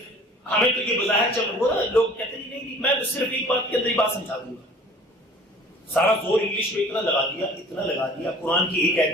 ہمیں تو یہ بظاہر چل رہا ہے، لوگ کہتے ہیں نہیں، میں صرف ایک بات کے اندر ہی بات سمجھا دوں گا. سارا زور انگلش میں اتنا لگا دیا، قرآن کی ایک آیت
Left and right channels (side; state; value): both; normal; correlation 0.48